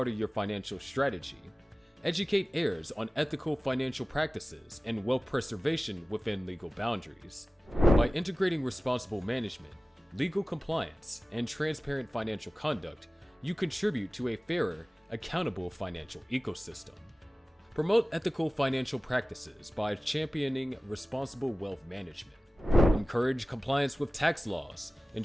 of your financial strategy. Educate heirs on ethical financial practices and wealth preservation within legal boundaries. By integrating responsible management, legal compliance, and transparent financial conduct, you contribute to a fairer, accountable financial ecosystem. Promote ethical financial practices by championing responsible wealth management. Encourage compliance with tax laws,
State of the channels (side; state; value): both; normal; correlation 0.97